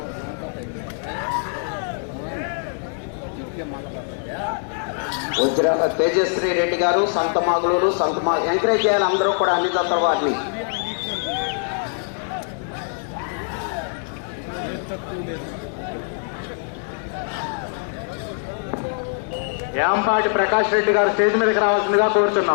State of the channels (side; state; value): right; silent; 63 dB below the other